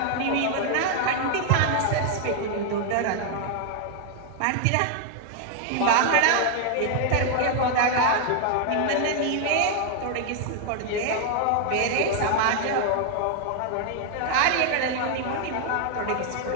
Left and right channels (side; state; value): both; different; correlation 0.00